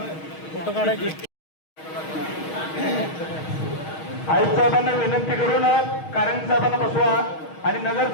फोटो काढायची. आयुक्त साहेबांना विनंती करून कारंग साहेबांना बसवा आणि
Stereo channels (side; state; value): right; late; 6.4 ms